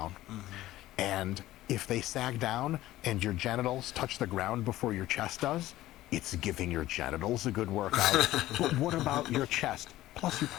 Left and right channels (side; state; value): right; quieter; 15.5 dB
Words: And if they sag down and your genitals touch the ground before your chest does, it's giving your genitals a good workout. But what about your chest? Plus, you